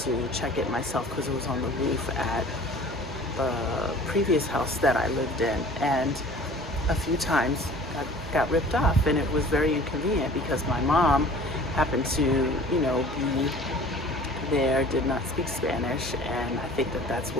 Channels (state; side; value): normal; both; correlation 0.47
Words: check it myself because it was on the roof at the previous house that I lived in, and a few times got ripped off, and it was very inconvenient because my mom happened to, be there, did not speak Spanish, and I think that's